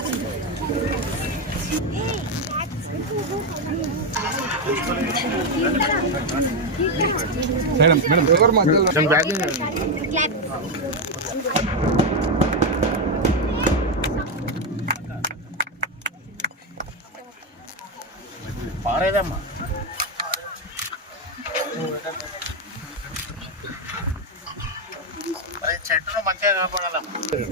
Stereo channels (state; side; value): normal; both; correlation 0.07